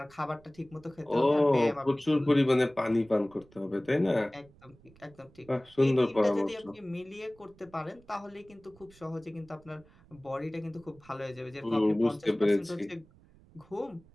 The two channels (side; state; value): right; noise; rumble, 26 dB below the sound